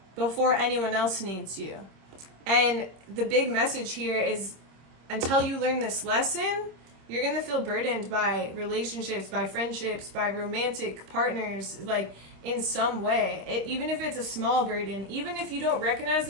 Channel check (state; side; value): late; left; 26 ms